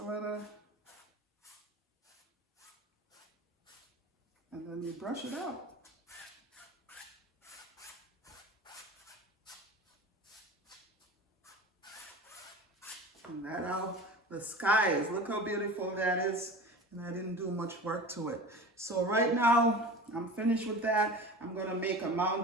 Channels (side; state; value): both; normal; correlation 0.35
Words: little. And then you brush it out. And that how the sky is. Look how beautiful that is. And I didn't do much work to it. So right now, I'm finished with that. I'm going to make a